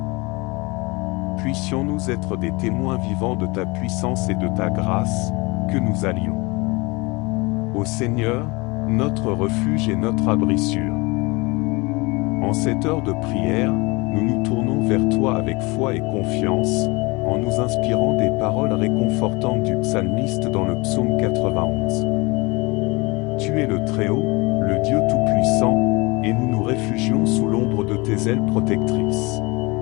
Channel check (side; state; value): right; quieter; 25.5 dB